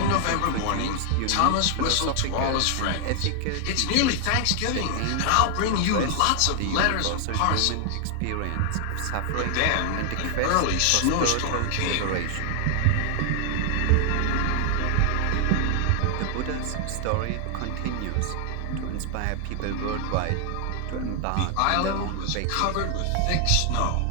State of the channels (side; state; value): both; different; correlation 0.00